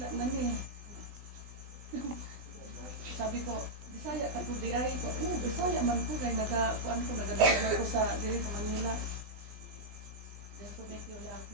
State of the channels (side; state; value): left; late; 20 ms